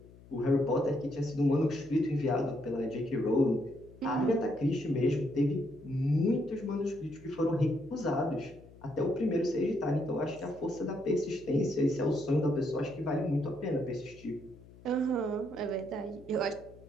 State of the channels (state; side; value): noise; left; hum, 22 dB below the sound